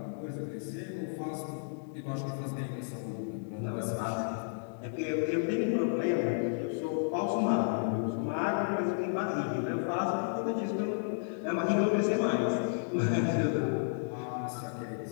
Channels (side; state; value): right; silent; digital silence